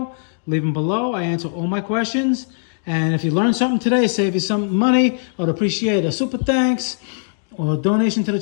leave them below. I answer all my questions. And if you learned something today, save you some money, I'd appreciate a super thanks or a donation to the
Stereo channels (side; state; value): right; silent; digital silence